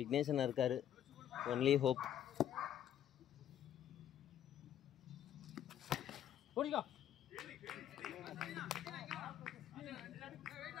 இருக்காரு. Only hope. போடிக்கோ.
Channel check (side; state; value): right; quieter; 10.7 dB